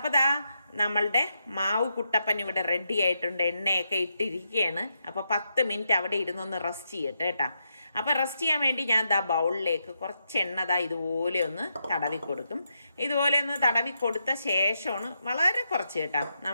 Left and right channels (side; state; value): both; inverted; correlation -0.83